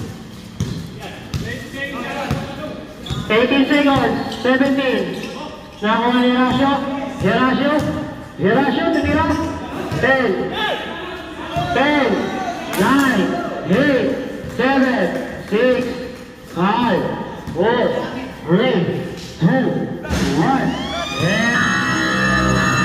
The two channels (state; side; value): identical; both; correlation 1.00